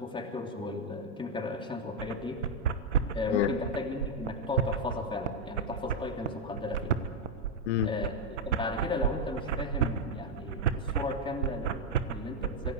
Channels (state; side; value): normal; both; correlation 0.02